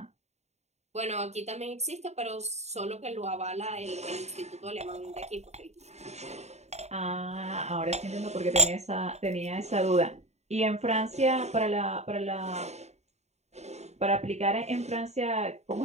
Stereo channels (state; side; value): late; left; 0.32 ms